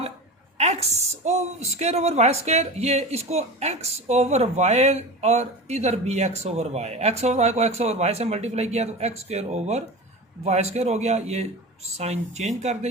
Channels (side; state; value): both; normal; correlation 0.30